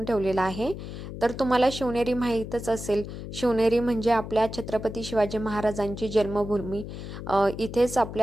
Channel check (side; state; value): left; noise; hum, 9 dB below the sound